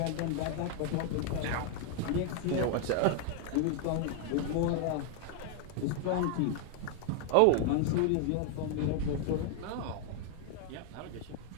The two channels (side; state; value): both; different; correlation 0.01